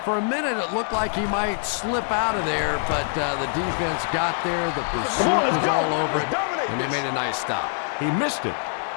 for a minute it looked like he might slip out of there, but the defense got there, the pursuit was all over it, and they made a nice stop. He missed it.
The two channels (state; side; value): silent; right; digital silence